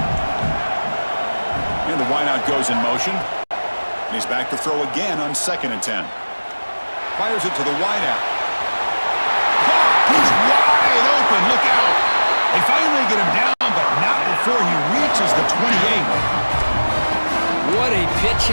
And the wideout goes in motion. And he's back to throw again on second and 10. Fires it to the wideout. He's wide open. Look out. They finally get him down, but not before he reaches the 28. What a pitch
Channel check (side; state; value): both; inverted; correlation -1.00